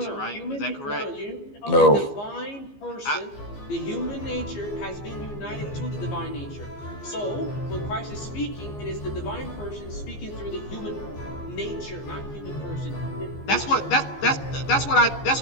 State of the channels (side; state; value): right; late; 15 ms